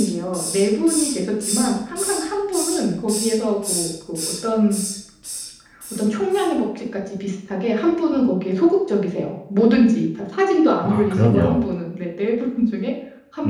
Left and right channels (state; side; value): identical; both; correlation 1.00